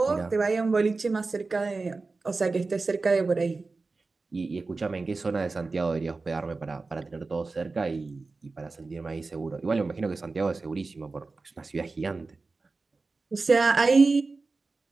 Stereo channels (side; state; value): left; quieter; 3.8 dB